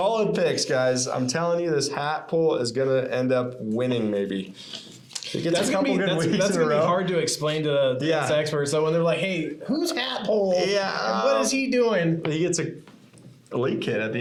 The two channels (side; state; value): both; identical; correlation 1.00